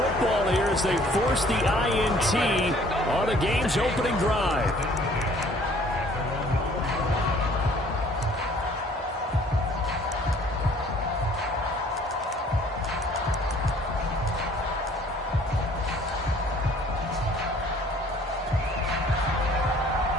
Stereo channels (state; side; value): normal; both; correlation 0.56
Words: here as they force the INT on the game's opening drive.